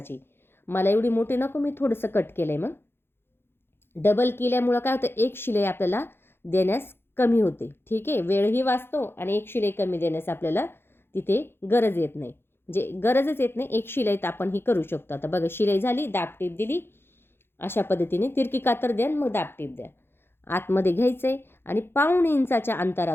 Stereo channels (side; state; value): right; late; 0.11 ms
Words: मला एवढी मोठी नको, मी थोडंसं कट केलं आहे. मग डबल केल्यामुळं काय होतं, एक शिलाई आपल्याला देण्यास कमी होते. ठीक आहे, वेळही वाचतो आणि एक शिलाई कमी देण्यास आपल्याला तिथे गरज येत नाही, म्हणजे गरजच येत नाही. एक शिलाईत आपण ही करू शकतो. आता बघा शिलाई झाली, दाब टीप दिली, अशा पद्धतीने तिरकी कातर द्या, मग दाब टीप द्या. आतमध्ये घ्यायचं आहे आणि 1.5 इंचाच्या